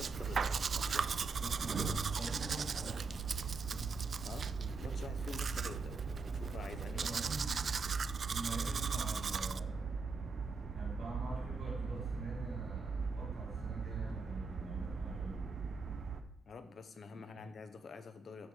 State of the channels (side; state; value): left; quieter; 4.4 dB